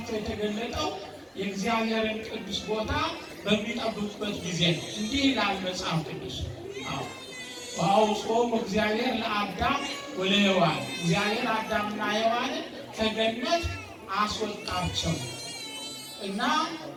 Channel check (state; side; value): identical; both; correlation 1.00